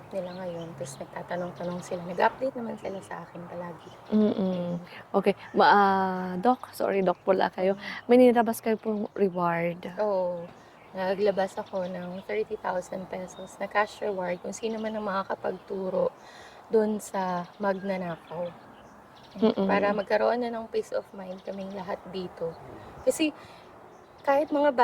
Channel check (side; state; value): both; identical; correlation 1.00